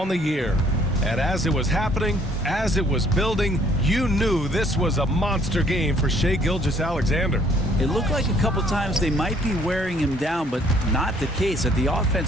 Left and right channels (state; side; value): normal; both; correlation 0.62